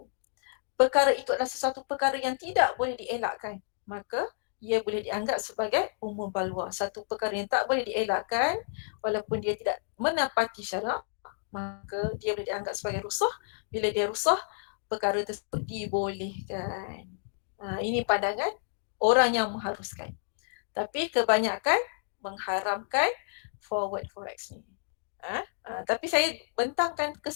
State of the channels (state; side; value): silent; right; digital silence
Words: perkara itu adalah sesuatu perkara yang tidak boleh dielakkan, maka ia boleh dianggap sebagai umum balwa. Satu perkara yang tak boleh dielakkan walaupun dia tidak menepati syarak, maka dia boleh dianggap sebagai rusah. Bila dia rusah, perkara tersebut dibolehkan. Ini pandangan orang yang mengharuskan. Tapi kebanyakan mengharamkan forward forex ni. Tapi saya bentangkan ke